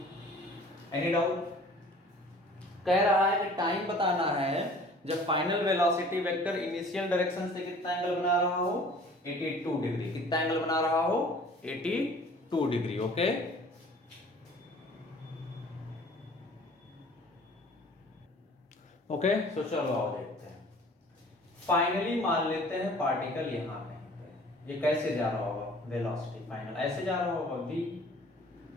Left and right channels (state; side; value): normal; both; correlation 0.49